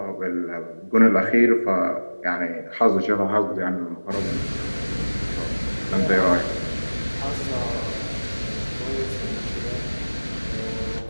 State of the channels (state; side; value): inverted; both; correlation -1.00